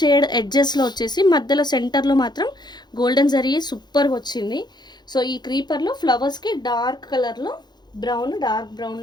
ఎడ్జెస్లో వచ్చేసి మధ్యలో సెంటర్లో మాత్రం గోల్డెన్ జరీ సూపర్గా వచ్చింది. సో ఈ క్రీపర్లో ఫ్లవర్స్కి డార్క్ కలర్లో డార్క్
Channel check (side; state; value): right; late; 0.21 ms